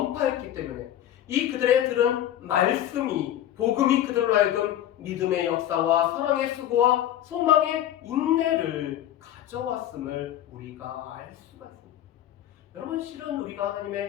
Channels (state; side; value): quieter; right; 11.9 dB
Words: 때문에 이 그들의 들은 말씀이 복음이 그들로 하여금 믿음의 역사와 사랑의 수고와 소망의 인내를 가져왔음을 우리가 알 수가 있습니다. 여러분 실은 우리가